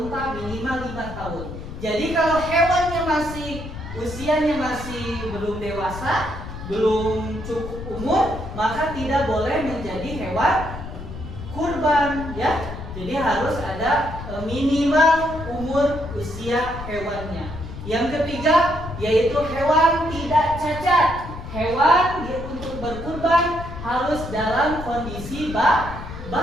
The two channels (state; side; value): noise; left; rumble, 10 dB below the sound